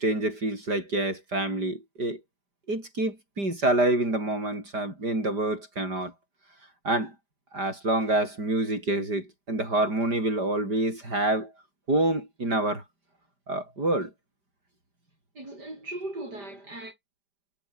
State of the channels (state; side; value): late; left; 5.0 ms